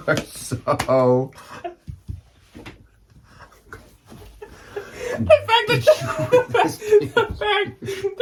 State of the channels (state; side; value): identical; both; correlation 1.00